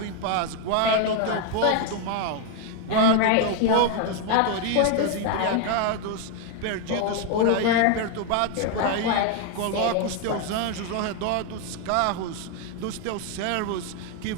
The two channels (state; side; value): different; both; correlation 0.01